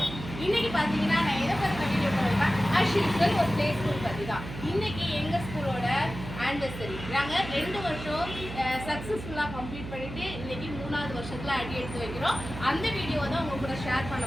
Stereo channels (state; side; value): noise; right; hum, 10 dB below the sound